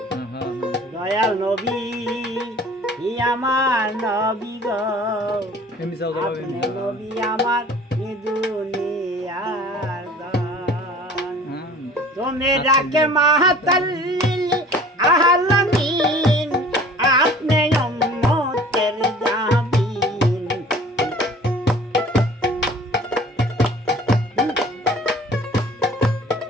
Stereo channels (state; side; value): normal; both; correlation 0.47